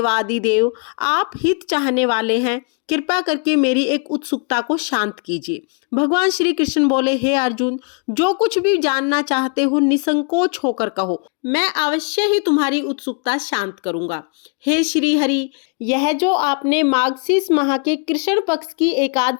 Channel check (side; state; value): right; quieter; 37.9 dB